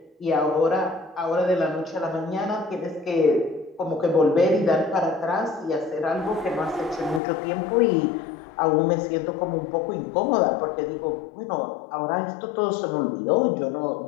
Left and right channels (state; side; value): drops out; right; at 7.2 s